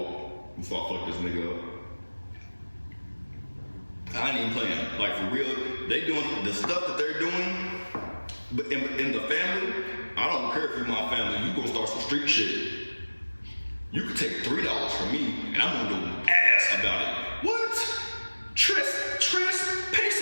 before I fuck this nigga up. I ain't even playing. Like, for real, they doing the stuff that they're doing, but in the family, I don't care if you're my family, you gonna start some street shit. You could take $3 from me, and I'm gonna go ass about it. What? Tres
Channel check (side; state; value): both; inverted; correlation -1.00